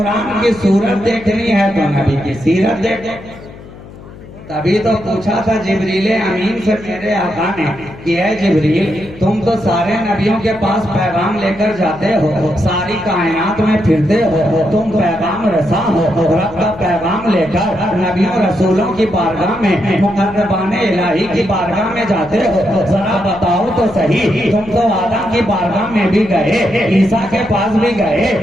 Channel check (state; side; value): noise; left; hum, 18 dB below the sound